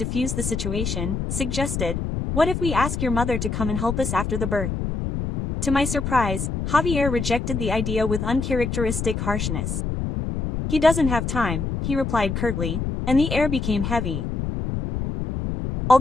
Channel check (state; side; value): noise; left; rumble, 3 dB below the sound